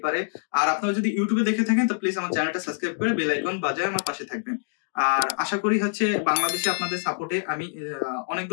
পারে। আর আপনারা যদি ইউটিউবে দেখে থাকেন তো প্লিজ আমার চ্যানেলটা সাবস্ক্রাইব করে বেল আইকন বাজায় আমার পাশে থাকবেন। আর আশা করি বাংলাদেশে আপনাদের সাপোর্টে আমি অনেক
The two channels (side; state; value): right; silent; digital silence